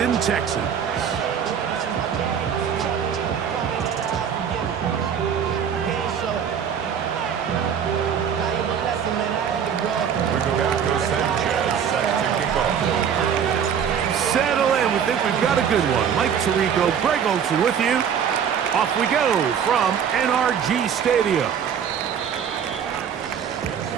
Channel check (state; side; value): quieter; left; 7.9 dB